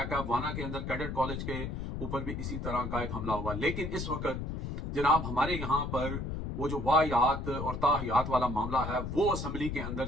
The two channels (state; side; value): noise; left; rumble, 4 dB below the sound